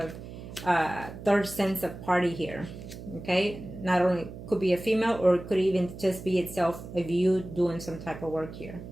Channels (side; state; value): right; noise; hum, 12 dB below the sound